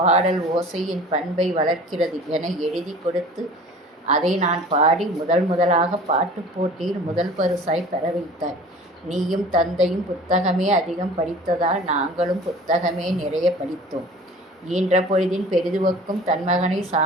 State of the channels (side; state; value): both; normal; correlation 0.44